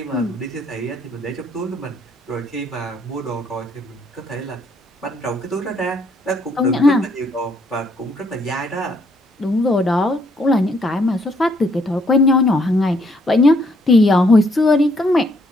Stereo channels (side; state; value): both; normal; correlation 0.69